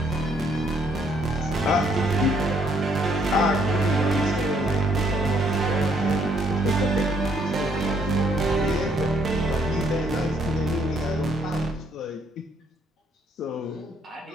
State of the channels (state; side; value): normal; both; correlation 0.68